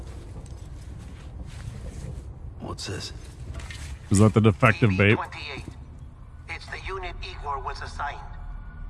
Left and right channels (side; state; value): both; identical; correlation 1.00